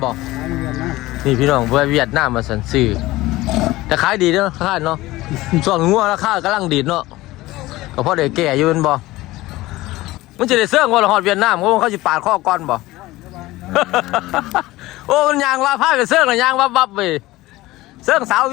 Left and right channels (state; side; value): quieter; right; 18.3 dB